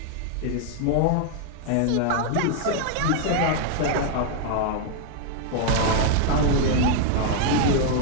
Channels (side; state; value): both; different; correlation 0.00